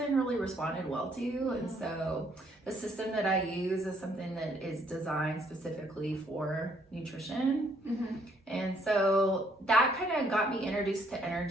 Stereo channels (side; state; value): both; normal; correlation 0.68